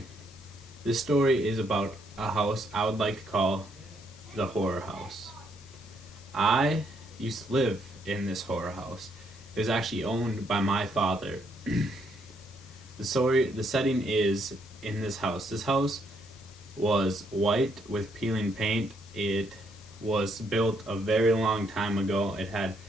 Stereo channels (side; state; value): both; normal; correlation 0.73